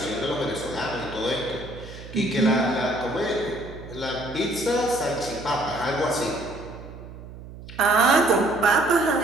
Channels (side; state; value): right; noise; hum, 15 dB below the sound